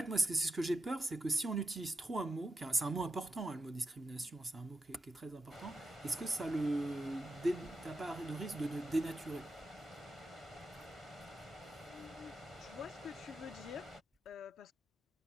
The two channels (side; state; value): both; normal; correlation 0.87